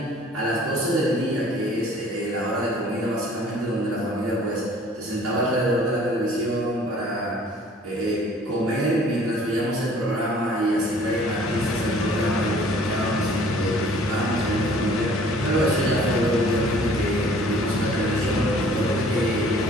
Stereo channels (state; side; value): normal; both; correlation 0.53